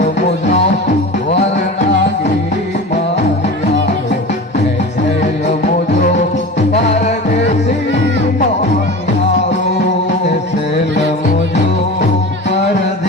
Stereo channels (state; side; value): normal; both; correlation 0.32